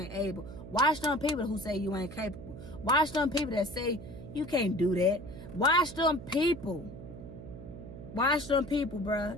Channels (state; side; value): noise; right; hum, 13 dB below the sound